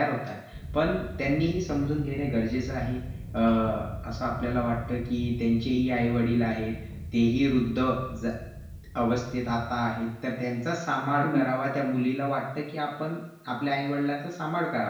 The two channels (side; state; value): both; identical; correlation 1.00